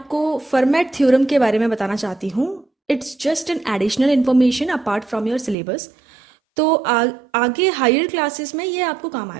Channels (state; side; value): drops out; left; at 5.6 s